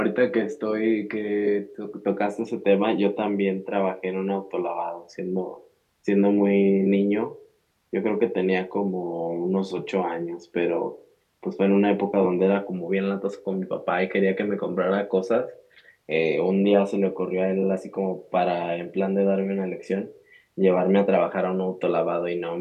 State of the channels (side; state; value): both; identical; correlation 1.00